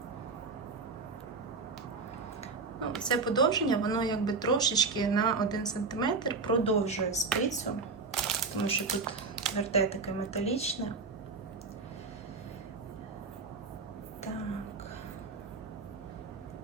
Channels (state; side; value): quieter; left; 4.3 dB